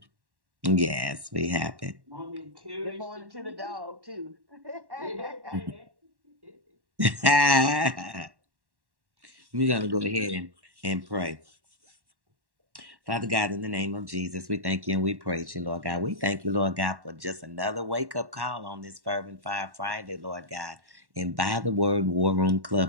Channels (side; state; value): left; late; 1.1 ms